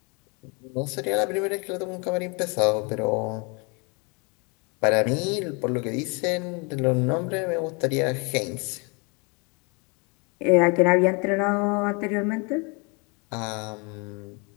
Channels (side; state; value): right; quieter; 31.7 dB